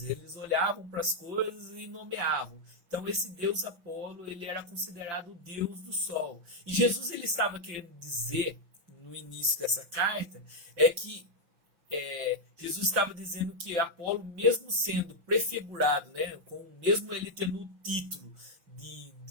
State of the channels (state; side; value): late; left; 5.9 ms